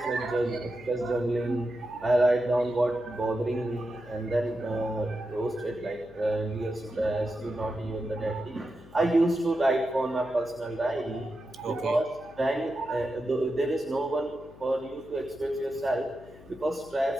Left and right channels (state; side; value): noise; left; hum, 20 dB below the sound